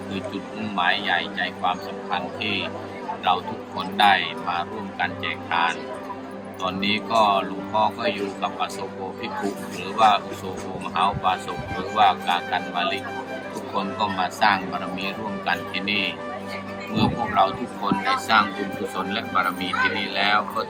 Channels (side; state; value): both; identical; correlation 1.00